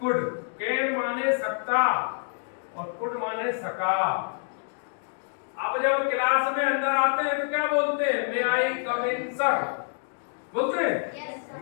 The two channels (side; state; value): right; silent; digital silence